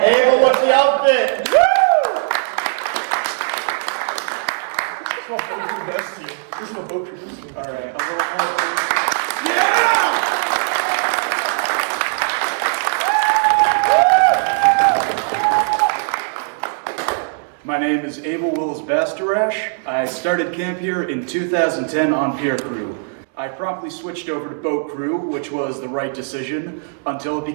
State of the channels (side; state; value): left; silent; digital silence